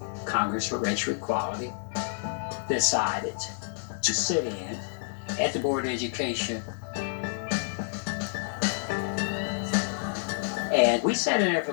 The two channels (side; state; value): right; silent; 59 dB below the other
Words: Congress for Racial Equality, decided to sit in at the Board of Education. And we sat in there for